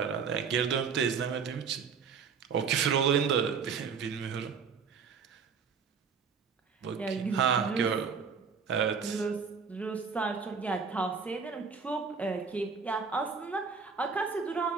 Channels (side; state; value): left; quieter; 5.9 dB